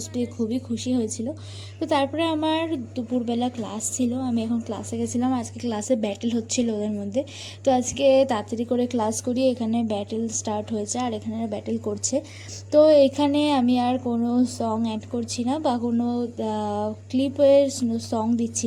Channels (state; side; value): identical; both; correlation 1.00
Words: পেয়ে খুবই খুশি হয়েছিল। তো তারপরে আমার দুপুরবেলা ক্লাস ছিল, আমি এখন ক্লাসে গেছিলাম। আজকে ক্লাসে ব্যাটেল হচ্ছিল ওদের মধ্যে, তো আজকে তাড়াতাড়ি করে ক্লাস করি, এখানে ব্যাটেল স্টার্ট হয়েছে আর এখানে ব্যাটেল করছে। তো এখানে আমি আর কোনো সং অ্যাড করছি না বা কোনো ক্লিপের সং